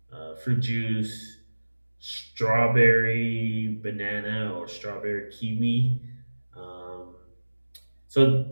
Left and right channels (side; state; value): both; inverted; correlation -1.00